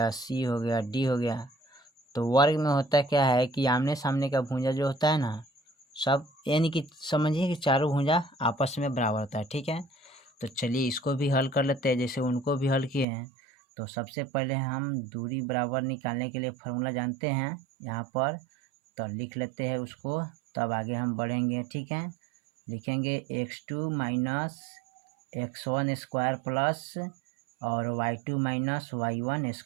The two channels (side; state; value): left; drops out; at 13.1 s